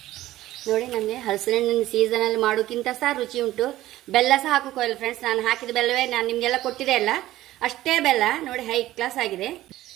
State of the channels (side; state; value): left; quieter; 15.3 dB